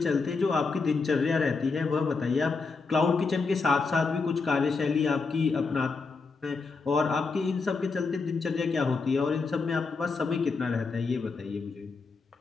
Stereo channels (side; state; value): right; quieter; 4.4 dB